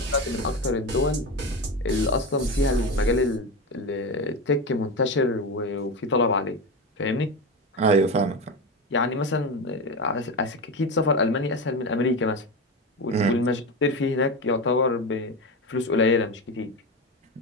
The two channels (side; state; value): both; normal; correlation 0.20